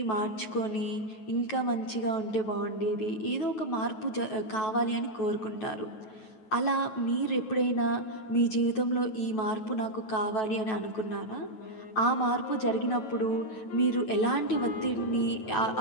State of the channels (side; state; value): right; late; 9.2 ms